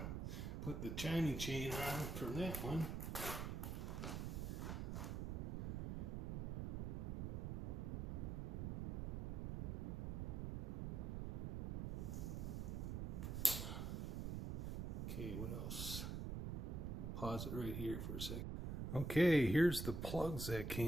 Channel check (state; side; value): noise; right; rumble, 2 dB below the sound